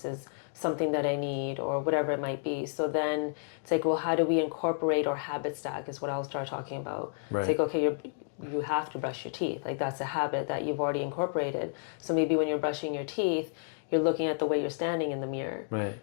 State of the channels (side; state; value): right; silent; digital silence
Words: is something that I need, or whatever it might be. So then it's like, well, how do we incorporate or habit stack is what I'll start talking about. Right. It's like, okay, you have to brush your teeth. Like that's a habit that you've already incorporated. So maybe when you're brushing your teeth, you're looking at the way you're standing in the mirror, right,